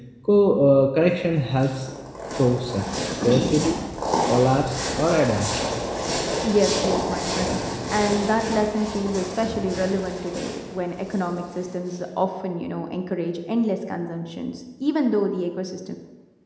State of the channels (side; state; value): both; identical; correlation 1.00